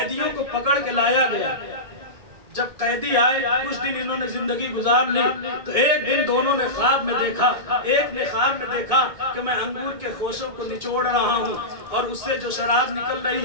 کو پکڑ کے لایا گیا۔ جب قیدی آئے کچھ دن انہوں نے زندگی گزار لی، تو ایک دن دونوں نے خواب میں دیکھا، ایک نے خواب میں دیکھا کہ میں انگور کے خوشوں کو نچوڑ رہا ہوں اور اس سے جو شراب نکل رہی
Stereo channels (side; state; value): left; late; 1.7 ms